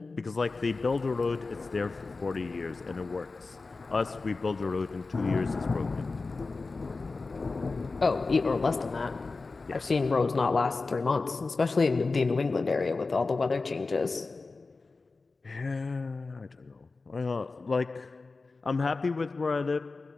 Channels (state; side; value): quieter; right; 3.8 dB